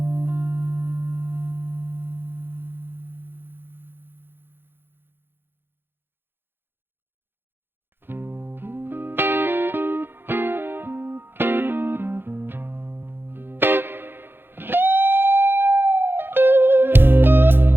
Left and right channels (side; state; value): left; late; 0.10 ms